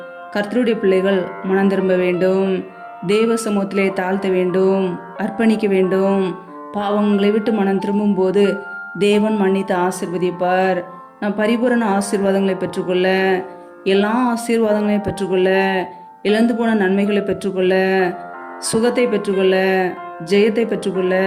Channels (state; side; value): identical; both; correlation 1.00